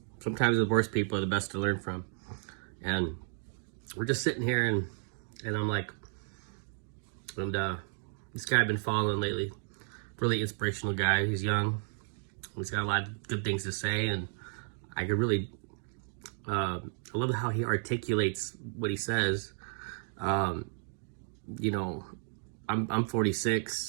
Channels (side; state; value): left; silent; 56 dB below the other